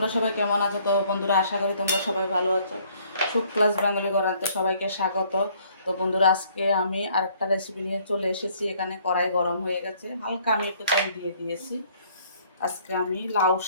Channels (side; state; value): both; inverted; correlation -0.62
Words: সবাই কেমন আছো? তো বন্ধুরা আশা করি তোমরা সবাই ভালো আছো। সুখ ক্লাস বেঙ্গলি করাতে সবাইকে স্বাগত। তো বন্ধুরা আজকে আমি আরেকটা রেসিপি নিয়ে চলে এসেছি। এখানে কড়াই গরম হয়ে গেছে, হালকা আমি একটু তেল দিয়ে দিয়েছি। আজকে আমি লাউ